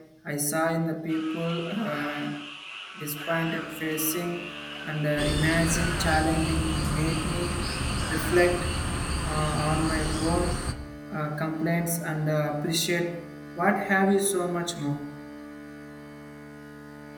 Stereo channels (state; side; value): identical; both; correlation 1.00